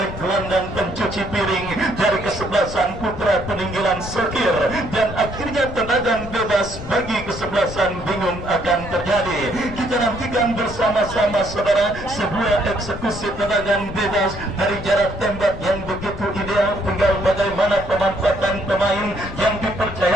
gelandang pencuci piring dari kesebelasan putra peninggilan Sokir, dan akhirnya tendangan bebas bagi kesebelasan bingung akan terjadi. Kita nantikan bersama-sama saudara sebuah eksekusi tendangan bebas dari jarak tembak yang begitu ideal, tinggal bagaimana pemanfaatan pemain yang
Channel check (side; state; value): left; noise; rumble, 11 dB below the sound